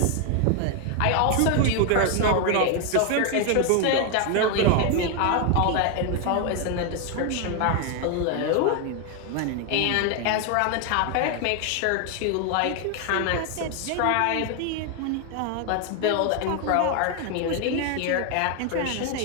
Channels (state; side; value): different; both; correlation 0.01